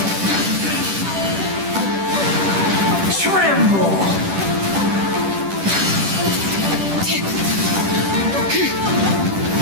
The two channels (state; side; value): late; left; 10 ms